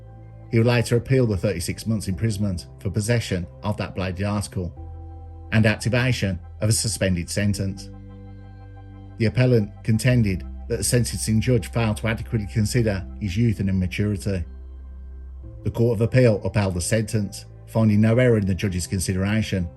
He would later appeal the 36 months imprisonment for possession of that bladed article and activation of a suspended sentence. The appellant contended that the sentencing judge failed to adequately consider his youth and immaturity. The Court of Appeal upheld the sentence, finding no error in the judge's consideration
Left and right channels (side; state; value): both; identical; correlation 1.00